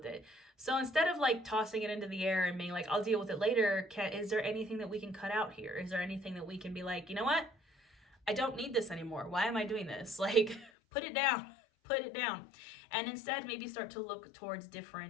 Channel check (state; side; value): drops out; right; at 10.7 s